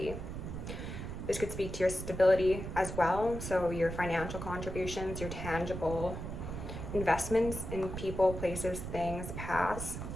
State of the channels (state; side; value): noise; right; rumble, 7 dB below the sound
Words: This could speak to your stability as well, so your financial contributions, your tangible investments in people, places, things, paths.